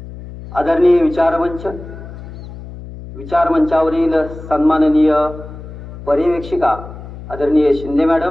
आदरणीय विचारमंचावरील सन्माननीय पर्यवेक्षिका आदरणीय शिंदे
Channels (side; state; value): left; noise; hum, 13 dB below the sound